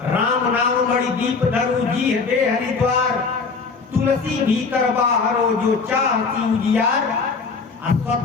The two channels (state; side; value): quieter; right; 4.7 dB